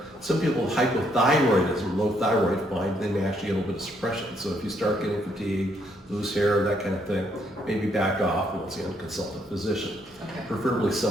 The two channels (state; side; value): normal; both; correlation 0.72